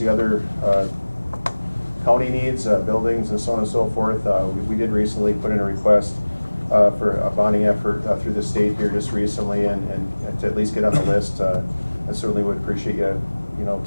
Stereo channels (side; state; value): both; inverted; correlation -1.00